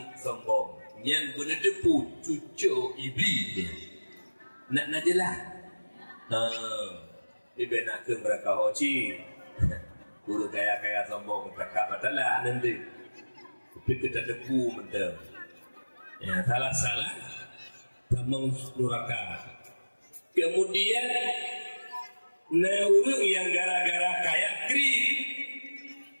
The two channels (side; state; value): both; inverted; correlation -1.00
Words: sombong. Yang benar depu cucu iblis. Nak jelah. Ibu nak ke mereka hoci. Urung kaya sombong tak matalah nanti. Tapi kita depu mentah. Ya salah tamang nuraka. Kemudian orang yang gara-gara kaya kri